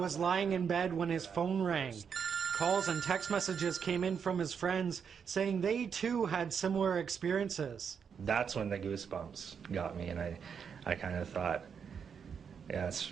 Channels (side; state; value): left; quieter; 6.9 dB